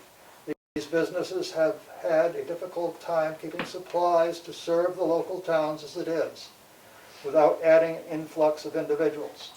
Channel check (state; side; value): identical; both; correlation 1.00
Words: These businesses have had a difficult time keeping supplies to serve the local towns as it is, without adding an influx of individuals.